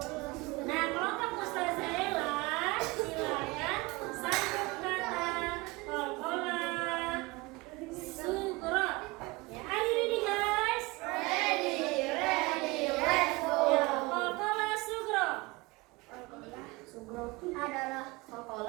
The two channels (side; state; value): left; quieter; 23.5 dB